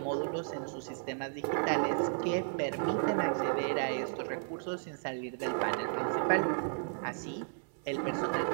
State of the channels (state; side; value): silent; left; digital silence